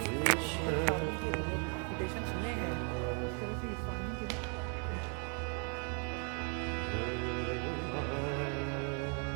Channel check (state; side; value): quieter; left; 38.8 dB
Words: फार्मिंग के रेपुटेशन सुने हैं, उस तरह से इस फार्मिंग के